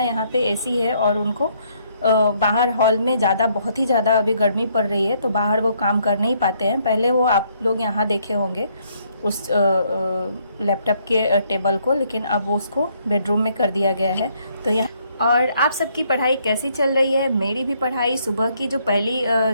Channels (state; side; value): inverted; both; correlation -0.69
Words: यहाँ पे एसी है और उनको बाहर हॉल में बहुत ही ज़्यादा अभी गर्मी पड़ रही है, तो बाहर वो काम कर नहीं पाते हैं। पहले वो आप लोग यहाँ देखे होंगे उस लैपटॉप के टेबल को, लेकिन अब वो उसको बेडरूम में कर दिया गया है। तो यहाँ और आप सबकी पढ़ाई कैसी चल रही है? मेरी भी पढ़ाई सुबह की जो पहली